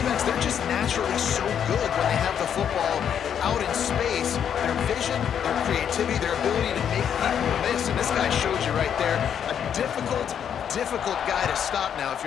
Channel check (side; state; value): right; quieter; 8.6 dB